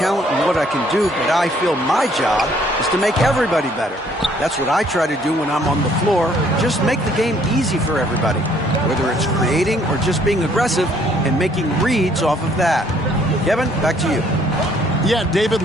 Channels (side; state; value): both; normal; correlation 0.63